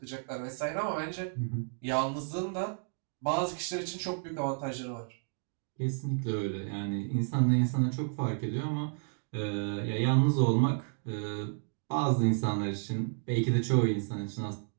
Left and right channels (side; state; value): left; silent; 56 dB below the other